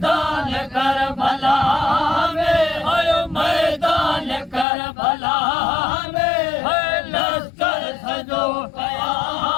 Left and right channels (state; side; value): drops out; right; at 4.7 s